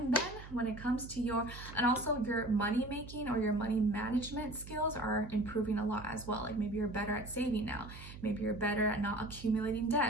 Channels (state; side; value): noise; right; hum, 14 dB below the sound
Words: then when it comes to your money making or your money management skills are improving a lot as well. Like maybe you're better at saving now, maybe you're better at not accumulating